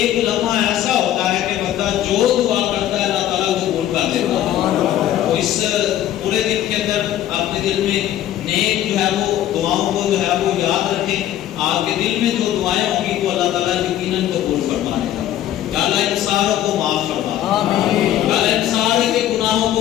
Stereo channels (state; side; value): quieter; right; 12.2 dB